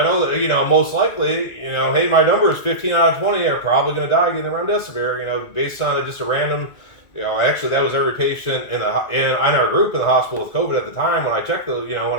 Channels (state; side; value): late; right; 2.0 ms